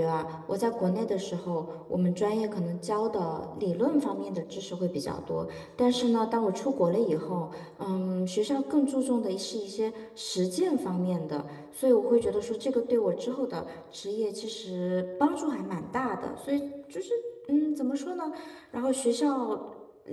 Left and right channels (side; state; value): both; identical; correlation 1.00